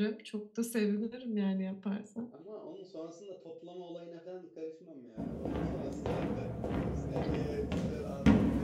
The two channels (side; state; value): both; identical; correlation 1.00